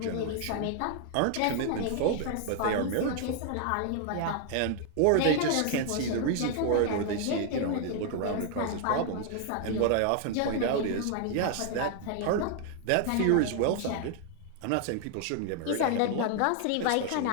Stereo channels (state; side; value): different; both; correlation 0.00